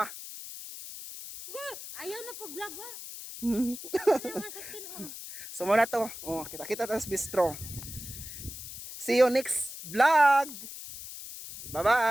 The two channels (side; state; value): left; noise; hiss, 11 dB below the sound